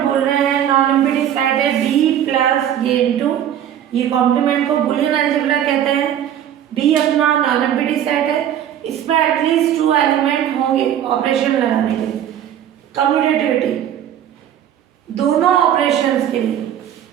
बोल रहे हैं नॉन एम्प्टी सेट है बी प्लस ये इनटू ये कॉम्प्लीमेंट को बूलियन अलजेब्रा कहते हैं। बी अपना नॉन एम्प्टी सेट है, इसमें एटलीस्ट 2 एलिमेंट होंगे ऑपरेशन लगाने के लिए। कम्यूटेटिविटी दोनों ऑपरेशंस के लिए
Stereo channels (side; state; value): left; quieter; 10.4 dB